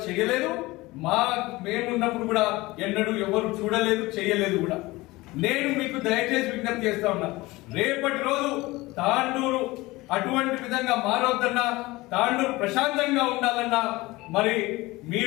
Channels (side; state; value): right; quieter; 20.7 dB